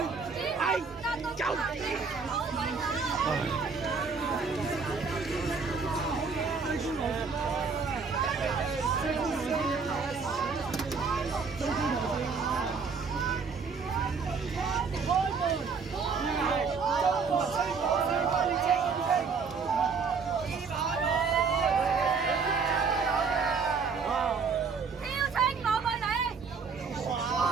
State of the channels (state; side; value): quieter; left; 5.2 dB